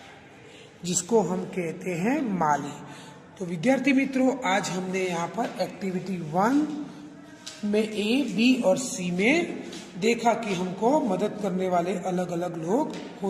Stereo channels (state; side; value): identical; both; correlation 1.00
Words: जिसको हम कहते हैं माली। तो विद्यार्थी मित्रों, आज हमने यहाँ पर एक्टिविटी 1 में ए, बी और सी में देखा कि हमको मदद करने वाले अलग अलग लोग